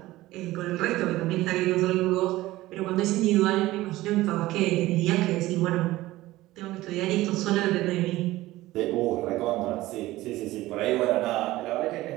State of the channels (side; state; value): left; quieter; 17.3 dB